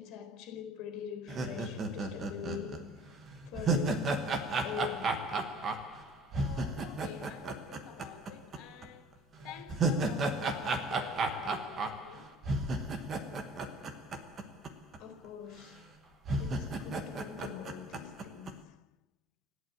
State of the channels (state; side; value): normal; both; correlation 0.48